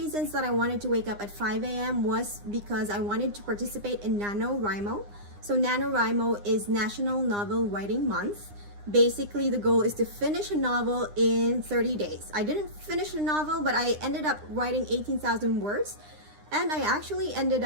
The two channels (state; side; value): late; left; 9.8 ms